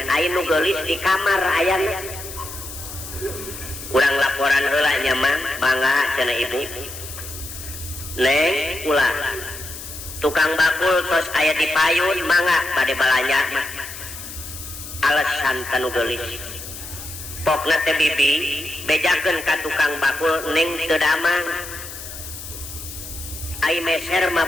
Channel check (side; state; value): left; noise; hiss, 11 dB below the sound